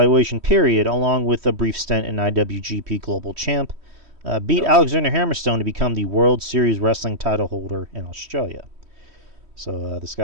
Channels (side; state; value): left; late; 3.1 ms